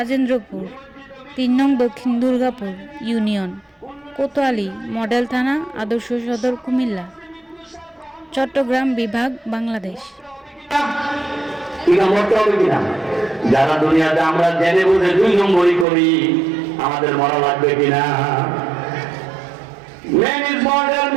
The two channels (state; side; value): drops out; left; at 15.9 s